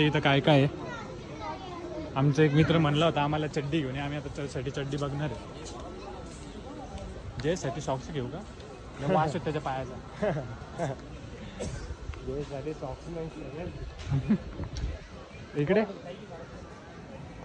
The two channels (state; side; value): identical; both; correlation 1.00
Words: इथं काय काय आहे. आमचा एक मित्र म्हणला होता आम्हाला चड्डी घेऊन. आम्ही आता त्यासाठी चड्डी बघणार आहे. जयसाठी सॉक्स घेऊ का? वास आहे त्याच्या पायाचा. जयसाठी सॉक्स नाही. इकडे